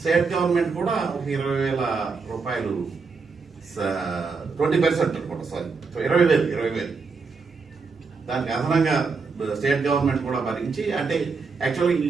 స్టేట్ గవర్నమెంట్ కూడా ₹20,000 20% అనుకుంటా, సారీ 20,000 దానికి అదనంగా స్టేట్ గవర్నమెంట్ కూడా భరించి అంటే యాక్చువల్గా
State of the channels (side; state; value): left; quieter; 4.8 dB